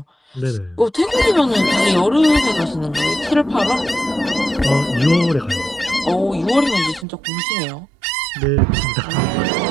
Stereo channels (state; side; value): drops out; left; at 7.1 s